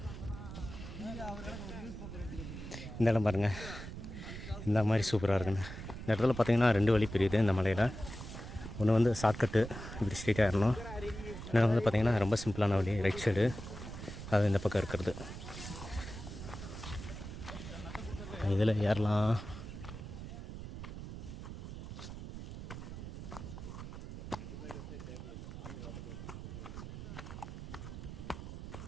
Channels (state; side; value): noise; right; rumble, 9 dB below the sound